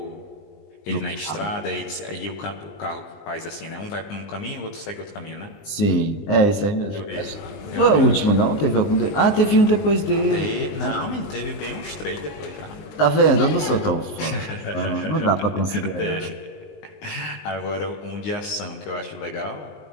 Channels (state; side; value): late; right; 20 ms